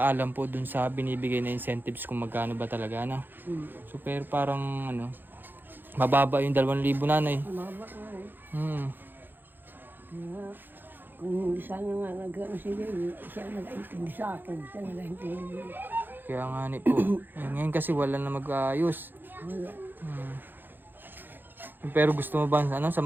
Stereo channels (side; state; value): left; late; 0.094 ms